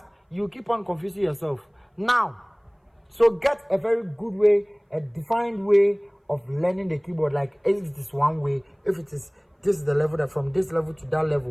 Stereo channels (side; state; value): both; identical; correlation 1.00